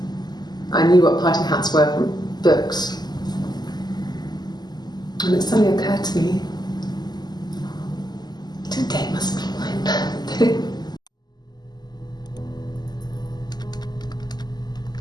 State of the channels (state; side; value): late; right; 0.20 ms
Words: I knew what party hats were from books. And it suddenly occurred to me, today must be my birthday.